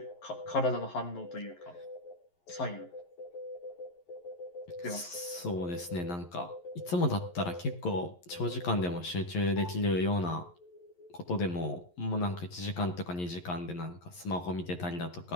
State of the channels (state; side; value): late; right; 11 ms